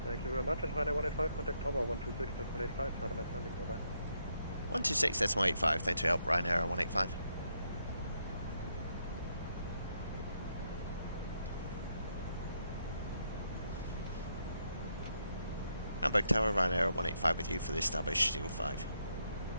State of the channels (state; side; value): inverted; both; correlation -0.77